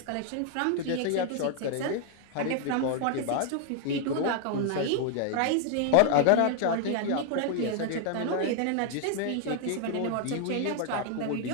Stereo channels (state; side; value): different; both; correlation 0.00